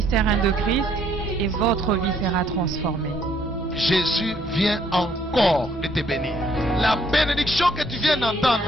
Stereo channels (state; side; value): normal; both; correlation 0.66